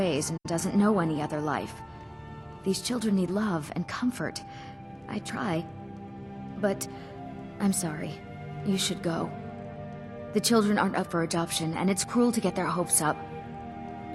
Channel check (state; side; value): identical; both; correlation 1.00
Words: and doesn't know any other life. These children need love and comfort. I try. But I'm sorry. You should go. The children aren't up for adoption, and it's cruel to get their hopes up.